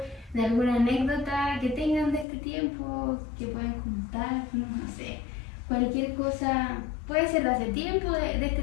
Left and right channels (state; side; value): drops out; right; at 2.2 s